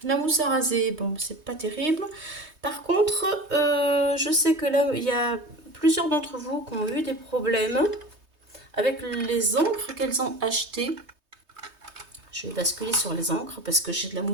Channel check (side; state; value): left; late; 3.2 ms